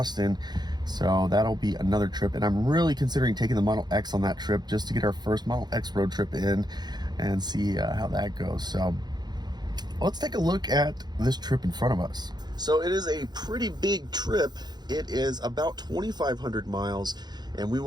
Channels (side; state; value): left; late; 0.20 ms